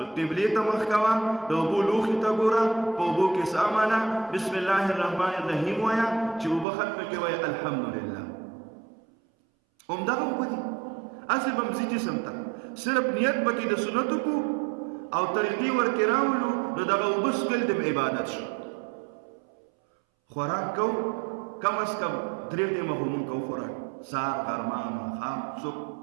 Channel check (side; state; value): left; drops out; at 6.7 s